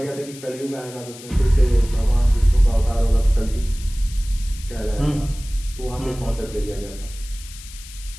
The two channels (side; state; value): left; noise; hiss, 17 dB below the sound